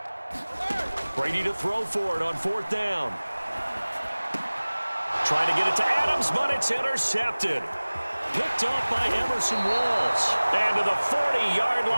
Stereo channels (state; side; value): inverted; both; correlation -1.00